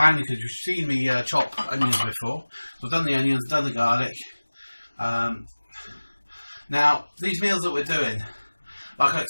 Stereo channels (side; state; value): both; inverted; correlation -1.00